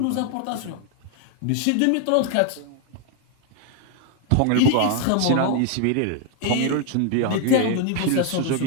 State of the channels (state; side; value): different; both; correlation 0.01